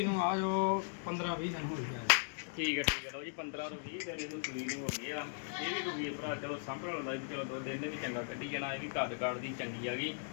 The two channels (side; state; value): right; silent; digital silence